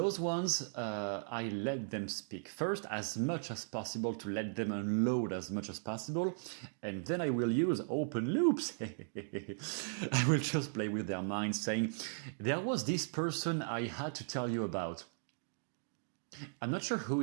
ones, I let them speak first as much as possible to let them unload as much as possible, and then I will use open loops. I will just play with their minds saying, there was this person I had to tell you about. I'm not sure who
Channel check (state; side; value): silent; left; digital silence